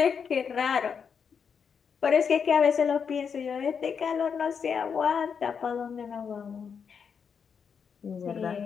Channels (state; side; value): quieter; right; 6.6 dB